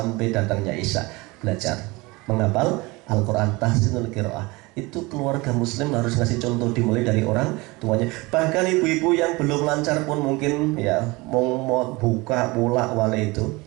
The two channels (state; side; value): quieter; left; 23.6 dB